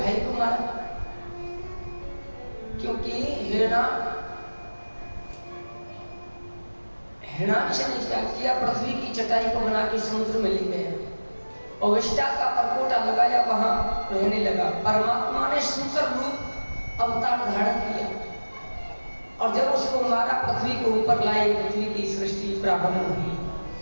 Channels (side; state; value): both; inverted; correlation -1.00